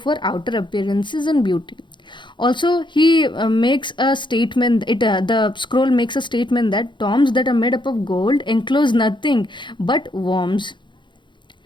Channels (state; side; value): late; right; 0.23 ms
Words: outer appearances and beauty. Also, he makes a statement. The scroll makes a statement that tombs that are made up of gold enclose nothing but worms.